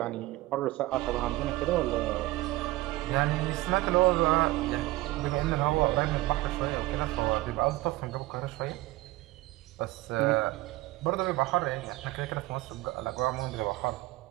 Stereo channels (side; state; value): left; quieter; 18.8 dB